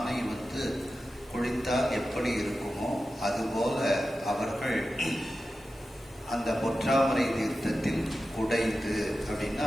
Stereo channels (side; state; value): left; noise; hiss, 27 dB below the sound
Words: குளித்தால் எப்படி இருக்குமோ அதுபோல அவர்கள் அந்த பொற்றாமரை தீர்த்தத்தில் குடைந்து அப்படின்னா